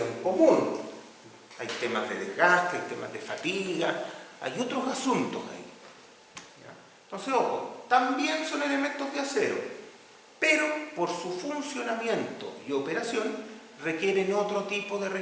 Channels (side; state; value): both; identical; correlation 1.00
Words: común. Hay temas de desgaste, hay temas de fatiga, hay otros asuntos ahí. ¿Ya? Entonces, ojo, también son elementos de acero, pero por su funcionamiento y operación requieren otro tipo de